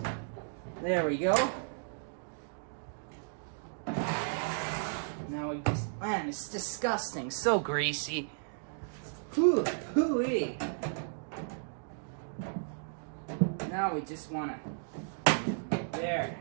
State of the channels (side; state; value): left; silent; digital silence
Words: There we go. Now we just, man, it's disgusting, so greasy. Hooey. Now we just want to, there,